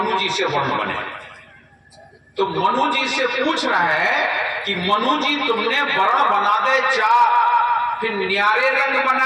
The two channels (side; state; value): both; identical; correlation 1.00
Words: जी से वर्ण बने। तो मनु जी से पूछ रहा है कि मनु जी तुमने वर्ण बना दे 4, फिर न्यारे रंग